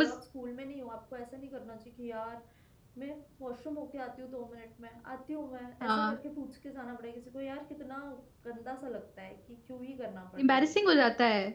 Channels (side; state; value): both; identical; correlation 1.00